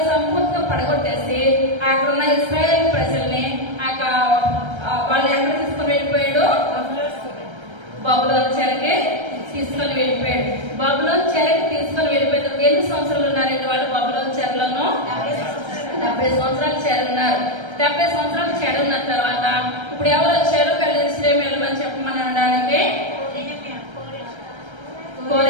సంపూర్తిగా పడగొట్టేసి అక్కడ ఉన్న ఇశ్రాయేల్ ప్రజల్ని వాళ్ళు ఎక్కడ తీసుకుని వెళ్ళిపోయాడు? బబులోను చెరకి తీసుకొని వెళ్ళిపోయాడు. బబులోను చెరకి తీసుకొని వెళ్ళిపోయినప్పుడు ఎన్ని సంవత్సరాలు ఉన్నారండి వాళ్ళు బబులోను చెరలోను? 70 సంవత్సరాలు చెరున్నారు. 70 సంవత్సరాలు చెరున్న తర్వాత ఇప్పుడు ఎవరు వచ్చారు? వెళ్ళి వెళ్ళమని చెప్పమని అనడానికి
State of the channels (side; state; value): left; late; 1.3 ms